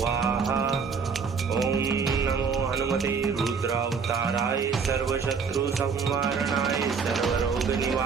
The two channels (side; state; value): left; quieter; 5.6 dB